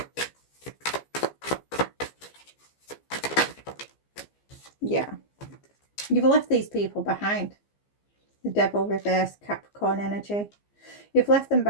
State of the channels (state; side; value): late; right; 15 ms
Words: Yeah. You've left these people behind. The Devil reverse, Capricorn energy. You've left them